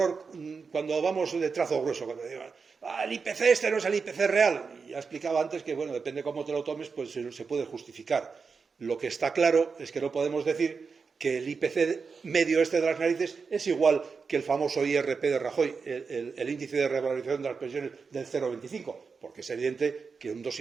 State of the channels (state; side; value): quieter; left; 5.1 dB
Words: cuando vamos de trazo grueso, cuando digo, el IPC este no es el IPC real. Y ya explicaba antes que, bueno, depende cómo te lo tomes, pues se puede justificar. Lo que está claro es que no podemos decir que el IPC medio este de las narices es igual que el famoso IRP de Rajoy, el índice de revalorización de las pensiones del 0,25, porque es evidente que un